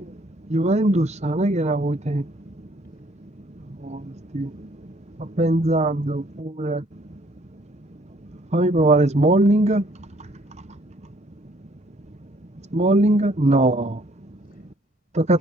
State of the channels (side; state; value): both; normal; correlation 0.62